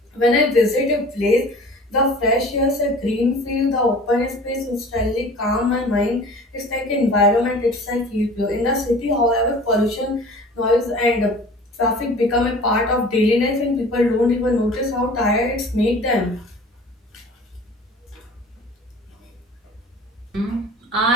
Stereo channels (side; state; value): both; normal; correlation 0.44